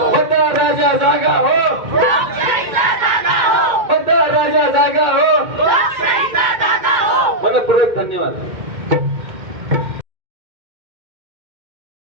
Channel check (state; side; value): late; left; 2.1 ms